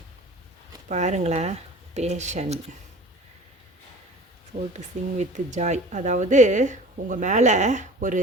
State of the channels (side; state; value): both; normal; correlation 0.42